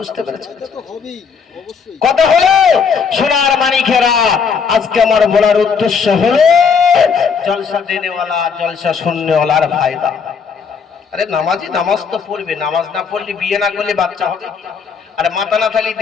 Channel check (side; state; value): right; quieter; 6.0 dB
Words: পেরেছেন? কথা হলো সোনার মানিকেরা, আজকে আমার বলার উদ্দেশ্য হলো জলসা দেনেওয়ালা জলসা শুননেওয়ালার ফায়দা। আরে নামাজি নামাজ তো পড়বে, নামাজ না পড়লে বিয়ে না করলে বাচ্চা হবে। আরে মাথা না থাকলে